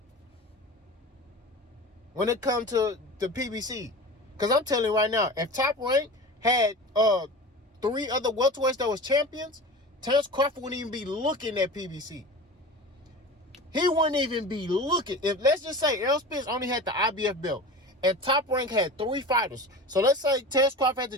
When it comes to the PBC. Because I'm telling you right now, if Top Rank had 3 other welterweights that was champions, Terence Crawford wouldn't even be looking at PBC. He wouldn't even be looking. If let's just say Errol Spence only had the IBF belt and Top Rank had 3 fighters. So let's say Terence Crawford had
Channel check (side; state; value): both; normal; correlation 0.33